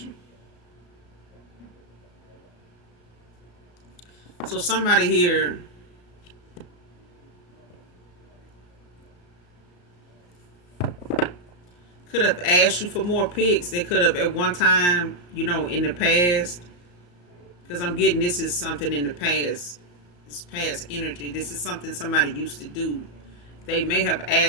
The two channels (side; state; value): right; late; 34 ms